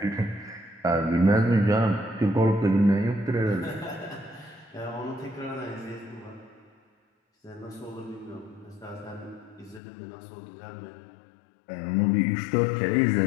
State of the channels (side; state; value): right; drops out; at 9.8 s